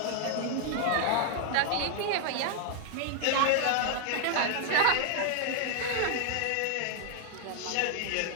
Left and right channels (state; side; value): different; both; correlation 0.00